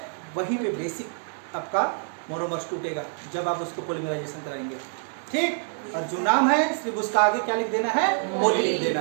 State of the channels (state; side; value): silent; left; 61 dB below the other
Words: वहीं पे बेसिक आपका मोनोमर्स टूटेगा जब आप उसको पॉलीमराइजेशन कराएंगे, ठीक? और जो नाम है सिर्फ उसका आगे क्या लिख देना है? पॉली लिख देना